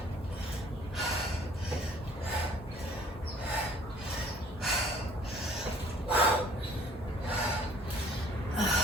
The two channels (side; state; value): both; normal; correlation 0.55